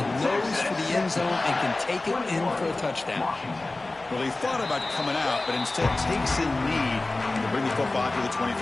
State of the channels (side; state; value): right; quieter; 3.0 dB